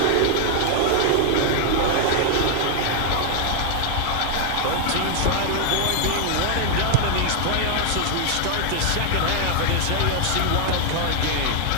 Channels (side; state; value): both; different; correlation 0.00